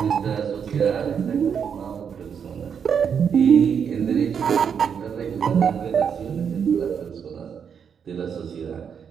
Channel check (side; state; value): left; quieter; 7.2 dB